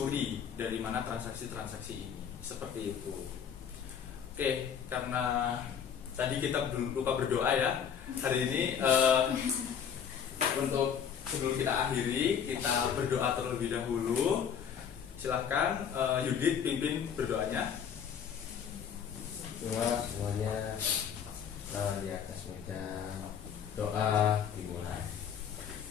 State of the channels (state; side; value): quieter; right; 7.9 dB